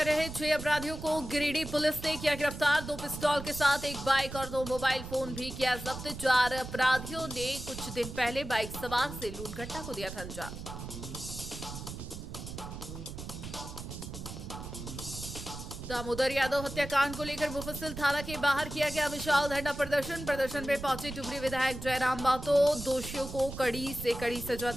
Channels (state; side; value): noise; right; rumble, 9 dB below the sound